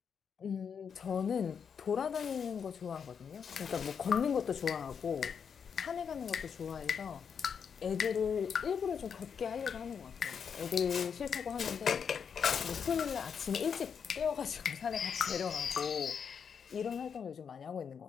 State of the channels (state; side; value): quieter; right; 6.9 dB